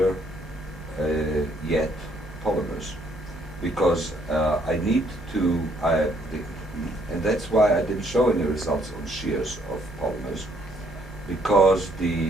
yet polymers, because I need to, and that's why I didn't show any results on shears of polymers, because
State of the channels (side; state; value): both; normal; correlation 0.68